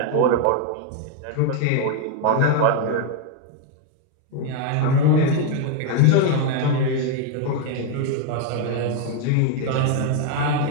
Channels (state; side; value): different; both; correlation 0.01